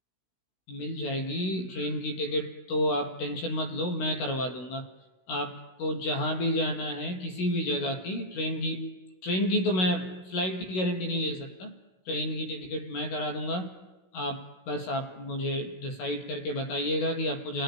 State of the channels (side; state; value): right; late; 16 ms